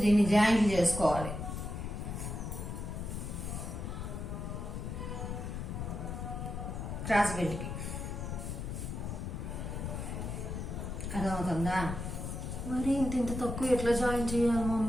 దీన్ని జాయింట్ చేసుకోవాలి. క్రాస్ బెల్ట్కి అర్థమవుతుందా? మరి ఇంత తక్కువ ఎట్లా జాయిన్ చేయాలి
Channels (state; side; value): noise; left; rumble, 5 dB below the sound